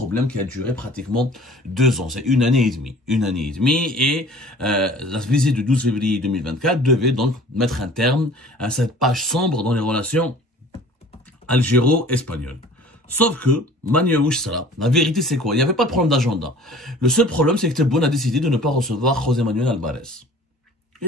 qui a duré pratiquement 2 ans. C'est 1 année et demie. 1 année et demie. Et la visite du 12 février 2024 devait donc mettre un terme à cette page sombre dans les relations algéro-espagnoles. Sauf que, la vérité c'est quoi? Il n'y avait pas de problème d'agenda. Le seul problème c'est que Tebboune a décidé de ne pas recevoir José Manuel Alvarez.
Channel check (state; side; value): normal; both; correlation 0.47